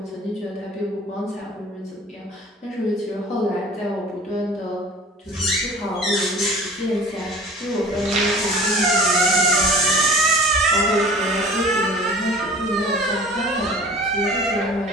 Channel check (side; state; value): both; normal; correlation 0.44